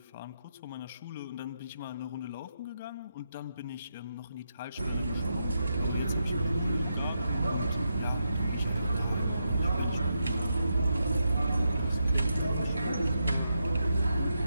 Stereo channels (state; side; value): inverted; both; correlation -0.84